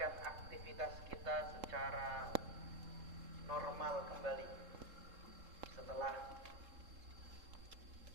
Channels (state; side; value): late; left; 3.7 ms